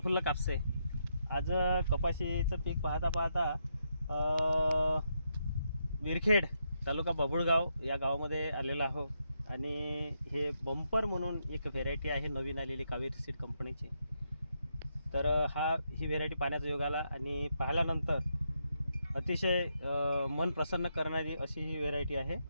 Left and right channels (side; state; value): both; inverted; correlation -0.80